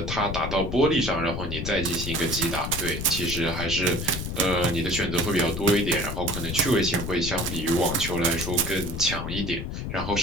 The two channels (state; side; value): noise; left; rumble, 5 dB below the sound